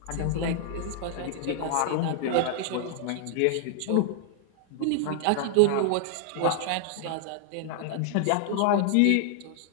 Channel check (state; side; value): different; both; correlation 0.00